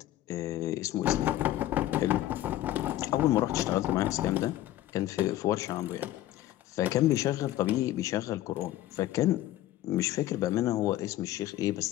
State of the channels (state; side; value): quieter; right; 14.3 dB